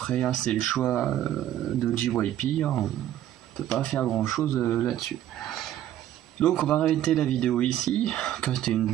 hein, c'est le choix de JYP, hein, on peut pas faire grand chose là-dessus. Donc on va arrêter la vidéo ici, que c'était une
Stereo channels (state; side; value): quieter; left; 12.1 dB